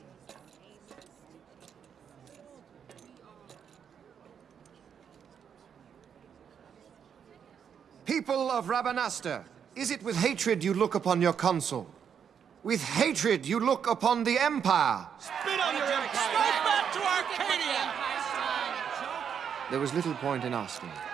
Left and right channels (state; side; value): quieter; left; 7.7 dB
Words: People of Rabanastre, is it with hatred you look upon your consul? With hatred you look upon the Empire? Spit on your empire! Strike back to Arcadia! There was little point in asking.